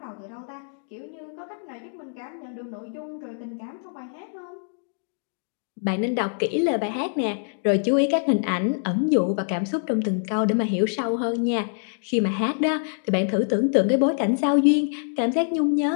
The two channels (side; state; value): right; silent; digital silence